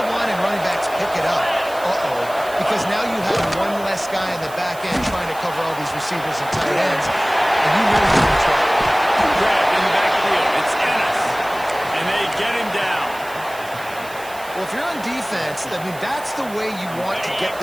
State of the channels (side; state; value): right; noise; hiss, 18 dB below the sound